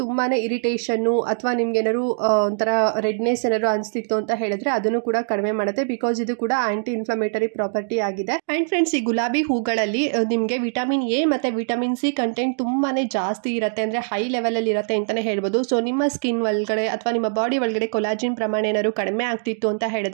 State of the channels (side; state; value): left; silent; digital silence